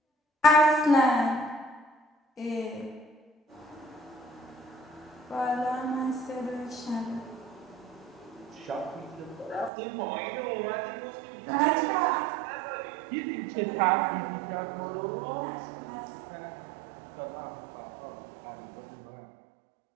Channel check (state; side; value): drops out; left; at 9.7 s